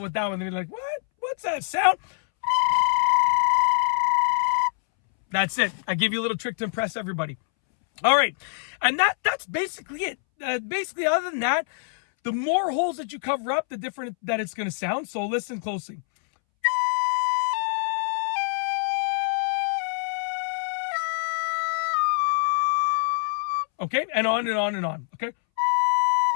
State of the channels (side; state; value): right; silent; 62 dB below the other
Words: with that one. They're like, what? What's that sound? That's it. I give you a little trick to impress everybody. All right. And that's basically it. Basically, other than that, the more holes that you cover up, the different that it's going to sound. So listen closely. Okay? And on and on and on. Okay?